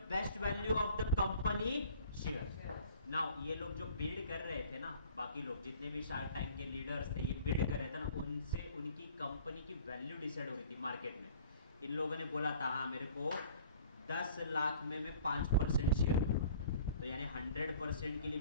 best value of the company share. Now ये लोग जो बिल्ड कर रहे थे ना, बाकी लोग जितने भी शार्क टैंक के लीडर्स थे, ये बिल्ड कर रहे थे ना, उनसे उनकी कंपनी की वैल्यू डिसाइड हो रही थी मार्केट में। इन लोगों ने बोला था हाँ मेरे को 10 लाख में मैं 5% शेयर लूंगा, तो यानी 100% के लिए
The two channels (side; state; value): both; inverted; correlation -0.50